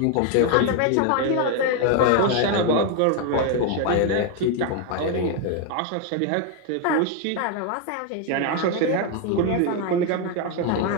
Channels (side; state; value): both; different; correlation 0.01